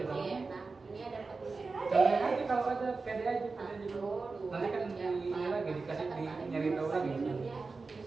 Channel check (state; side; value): quieter; left; 4.1 dB